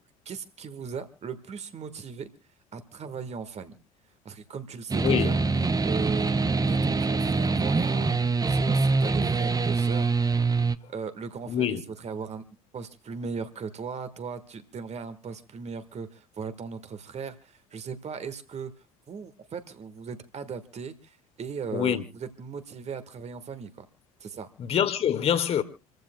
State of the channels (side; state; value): both; normal; correlation 0.68